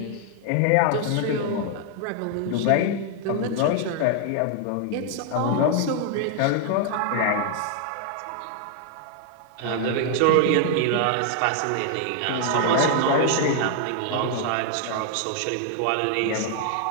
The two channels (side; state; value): both; different; correlation 0.00